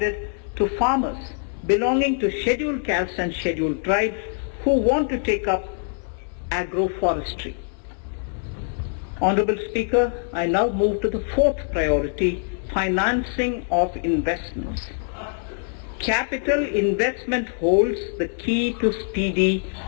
to farmers belonging to scheduled castes and scheduled tribes who want to take up agroforestry. Honorable Speaker, I now move to the 4th priority, financing of investments. Capital investment holds the key to speedy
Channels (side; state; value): right; silent; digital silence